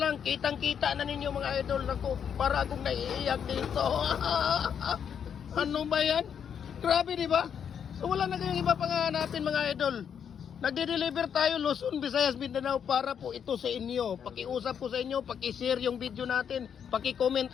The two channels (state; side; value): quieter; right; 7.9 dB